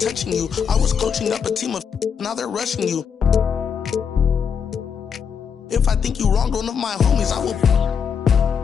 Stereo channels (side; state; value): right; quieter; 6.9 dB